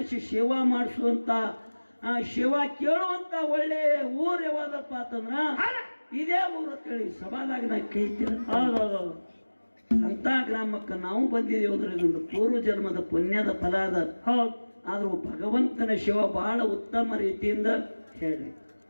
ಸೇವಾ ಮಾಡಿಸುವಂತ, ಶಿವ ಕೇಳುವಂತ ಒಳ್ಳೆ ಊರು ಯಾವ್ದಪ್ಪ ಅಂತಂದ್ರ ಇದೇ ಊರು ಹೇಳಿ ಸಭಾದಾಗ ನಾ ಕೈತಿ. ಅಂತ ಗ್ರಾಮಕ್ಕೆ ನಾವು ಬಂದಿದ್ದೇವೆ. ಇದೊಂದು ಪೂರ್ವ ಜನ್ಮದ ಪುಣ್ಯದ ಫಲ ಅದ. ಆದ್ರೂ ಭಗವಂತನ ಶಿವ ಬಹಳ ಉತ್ತಮ ರೀತಿಯಿಂದ ಹೇಳ್ರಿ.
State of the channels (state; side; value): inverted; both; correlation -1.00